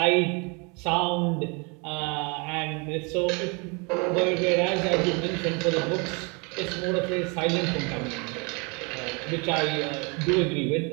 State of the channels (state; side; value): quieter; left; 30.8 dB